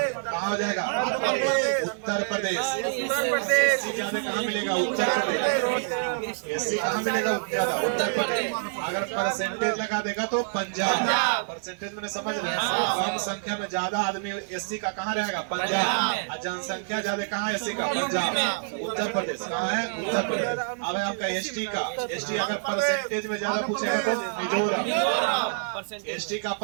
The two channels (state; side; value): silent; left; digital silence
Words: कहाँ हो जाएगा? उत्तर प्रदेश। एससी ज्यादा कहाँ मिलेगा? उत्तर प्रदेश। एससी कहाँ मिलेगा ज्यादा? उत्तर प्रदेश। अगर परसेंटेज लगा देगा तो पंजाब। परसेंटेज मैंने समझ रहे हैं, कम संख्या में ज्यादा आदमी एससी का कहाँ रहेगा? पंजाब। और जनसंख्या ज्यादा कहाँ एससी का? पंजाब। उत्तर प्रदेश कहाँ है? उत्तर प्रदेश। अब है आपका एसटी का। एसटी अगर परसेंटेज में ज्यादा पूछेगा तो मिजोरम। एसटी का